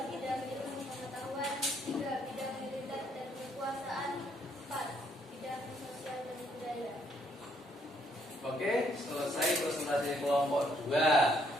Bidang ilmu pengetahuan. 3. Bidang militer dan kekuasaan. 4. Bidang sosial dan budaya. Oke, selesai presentasi kelompok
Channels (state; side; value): normal; both; correlation 0.69